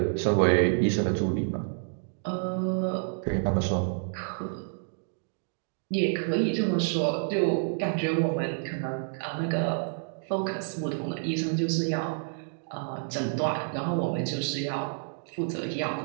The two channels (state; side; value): silent; left; digital silence